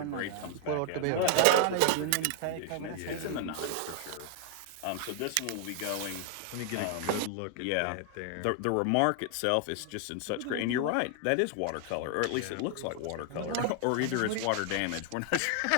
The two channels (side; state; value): both; different; correlation 0.00